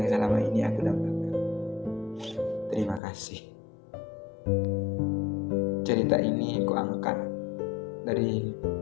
selama ini aku dambakan. Terima kasih. Cerita ini kuangkat dari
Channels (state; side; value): drops out; right; at 3.0 s